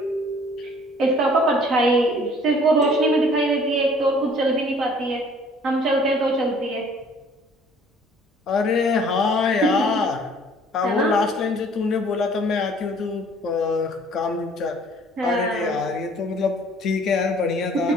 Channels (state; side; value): normal; both; correlation 0.55